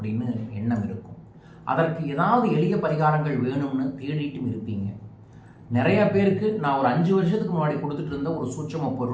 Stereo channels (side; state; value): both; identical; correlation 1.00